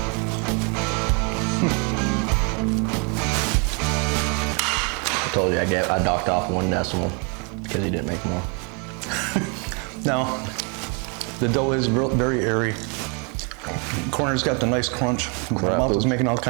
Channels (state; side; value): quieter; left; 35.2 dB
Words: I told you I docked off 1 decimal because he didn't make more. Now, the dough is very airy. Corner's got the nice crunch. My Crap, mouth is oops. making all